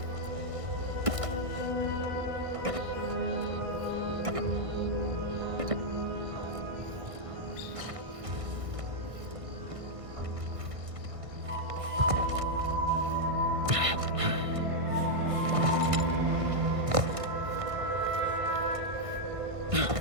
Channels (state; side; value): late; left; 1.6 ms